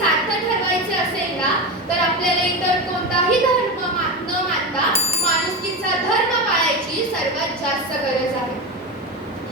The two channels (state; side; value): normal; both; correlation 0.20